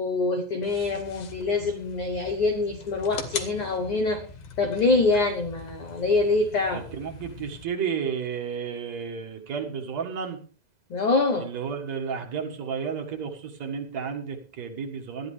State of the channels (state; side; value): late; right; 2.0 ms